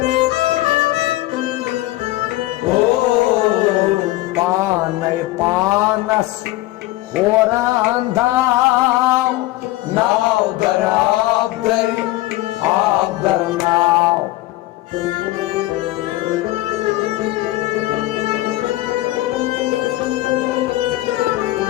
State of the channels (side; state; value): right; quieter; 17.7 dB